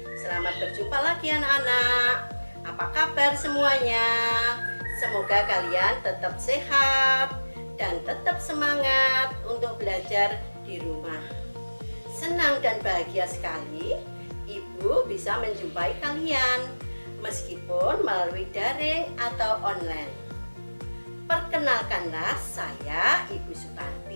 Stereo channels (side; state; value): both; inverted; correlation -1.00